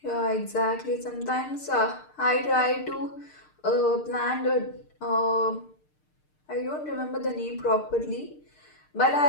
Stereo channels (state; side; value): late; right; 6.6 ms